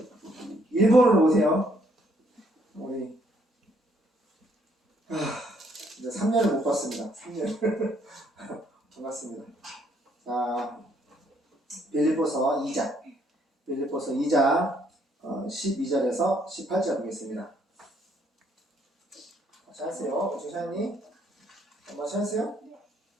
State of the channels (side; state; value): both; normal; correlation 0.68